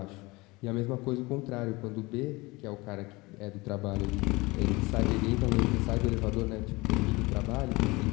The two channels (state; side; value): quieter; right; 23.2 dB